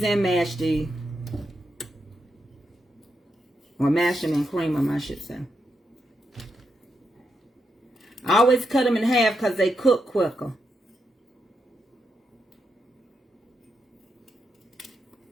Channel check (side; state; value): both; normal; correlation 0.83